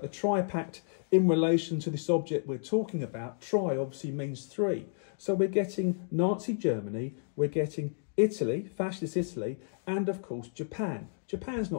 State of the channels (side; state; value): right; silent; digital silence